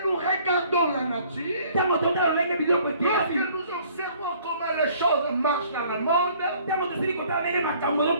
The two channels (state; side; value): inverted; both; correlation -0.57